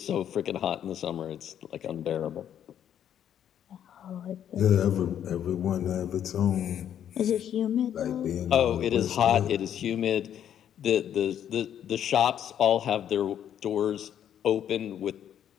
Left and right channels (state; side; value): quieter; right; 9.8 dB